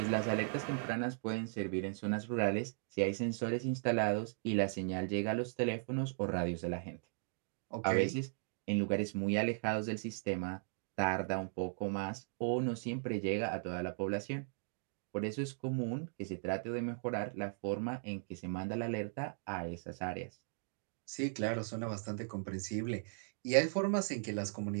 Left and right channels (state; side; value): silent; left; digital silence